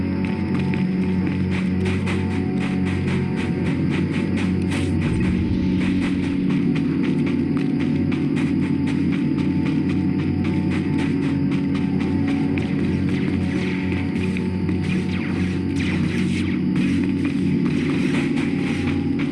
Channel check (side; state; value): both; identical; correlation 1.00